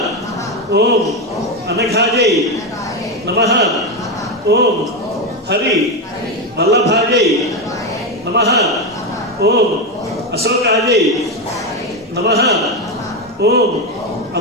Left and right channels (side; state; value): both; normal; correlation 0.11